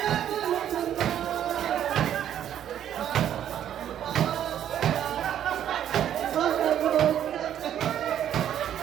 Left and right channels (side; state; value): left; quieter; 10.3 dB